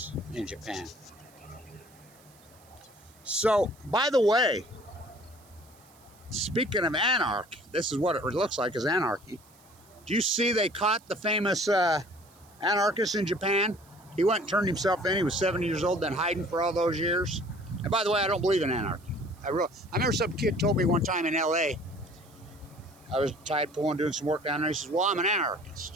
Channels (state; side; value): noise; right; hiss, 28 dB below the sound